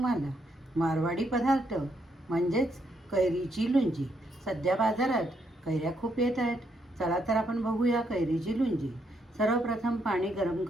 मारवाडी पदार्थ म्हणजेच कैरीची लोणची. सध्या बाजारात कैऱ्या खूप येत आहेत. चला तर आपण बघूया कैरीची लोणची. सर्वप्रथम पाणी गरम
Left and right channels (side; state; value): both; normal; correlation 0.76